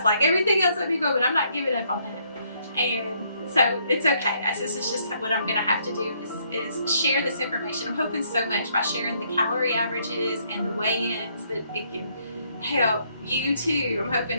like, everything else let me go, but I'm not giving up on that. And so it's okay. This is just what I'm gonna have to do, is share this information. I'm hoping so much by sharing the calorie averages and the weigh-ins that it can help you too. I'm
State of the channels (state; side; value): inverted; both; correlation -0.70